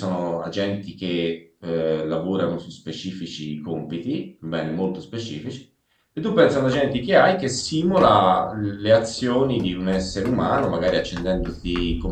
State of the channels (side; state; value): both; identical; correlation 1.00